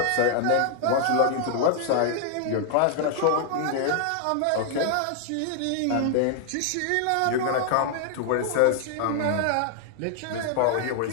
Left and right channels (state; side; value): different; both; correlation -0.01